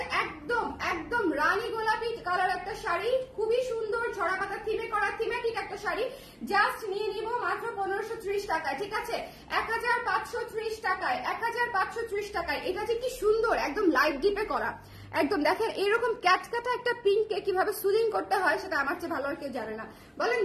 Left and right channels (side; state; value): both; identical; correlation 1.00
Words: একদম একদম রানী গোলাপি কালার একটা শাড়ি, খুবই সুন্দর ঝরা পাতা থিমে করা থিমেটিক একটা শাড়ি, জাস্ট নিয়ে নিব মাত্র 1530 টাকায়। ঠিক আছে, 1530 টাকায়, 1530 টাকায়। এটা যে কি সুন্দর, একদম লাইট ডিপে করা, একদম দেখেন এরকম ক্যাটকাটা একটা পিঙ্ককে কিভাবে সুদিং করতে হয় সেটা আমার চেয়ে ভালো আর কেউ জানে না। বলেন